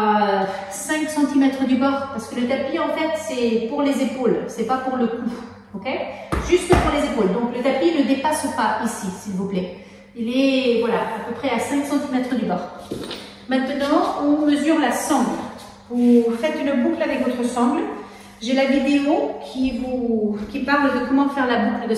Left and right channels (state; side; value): identical; both; correlation 1.00